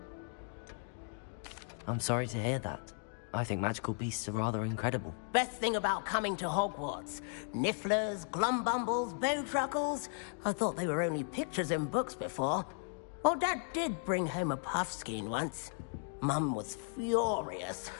I'm sorry to hear that. I think magical beasts are rather incredible. Best thing about coming to Hogwarts. Nifflers, glumbumbles, bowtruckles. I thought they were only pictures in books before. Well, Dad did bring home a puffskein once. Mum was furious.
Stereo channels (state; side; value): silent; right; 54 dB below the other